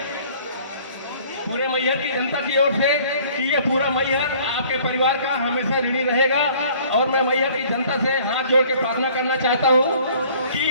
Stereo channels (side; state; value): both; inverted; correlation -0.54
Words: से कि ये पूरा मैहर आपके परिवार का हमेशा ऋणी रहेगा और मैं मैहर की जनता से हाथ जोड़ के प्रार्थना करना चाहता हूँ कि